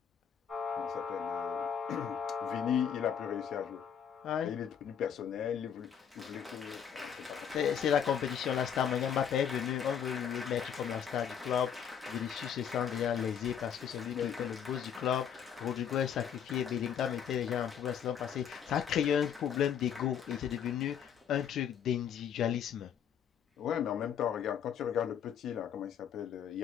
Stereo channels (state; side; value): quieter; right; 8.2 dB